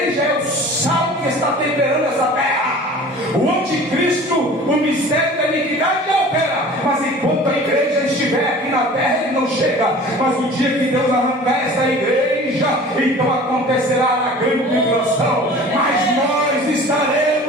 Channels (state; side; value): normal; both; correlation 0.43